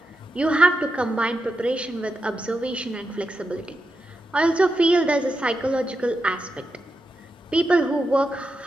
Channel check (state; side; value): normal; both; correlation 0.87